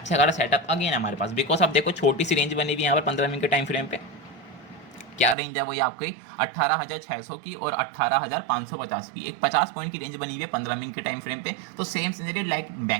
खासा सेटअप अगेन हमारे पास, बिकॉज आप देखो छोटी सी रेंज बनी हुई है यहाँ पर 15 मिनट के टाइम फ्रेम पे, क्या रेंज है वो ये आपकी 18,600 की और 18,550 की, एक 50 पॉइंट की रेंज बनी हुई है 15 मिनट के टाइम फ्रेम पे। तो same scenario like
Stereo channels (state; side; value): drops out; left; at 5.4 s